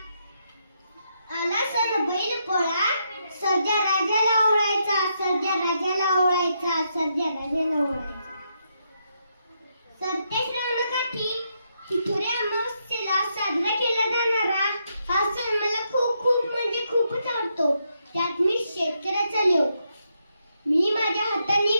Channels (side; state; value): both; inverted; correlation -0.79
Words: आला सण बैल पोळा, सर्जा राजाला ओळायचा, सर्जा राजाला ओळायचा, सर्जा राजाला ओळायचा. सरते श्रावणकाठी तिथुरे अमावस्येला साजरा केला जाणारा हा सण मला खूप म्हणजे खूपच आवडतो. त्यात मी शेतकऱ्याचा लोक. मी माझ्या हाताने